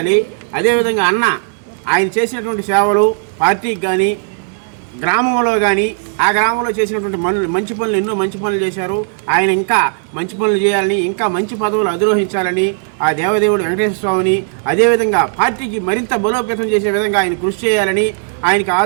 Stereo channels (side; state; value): left; silent; 64 dB below the other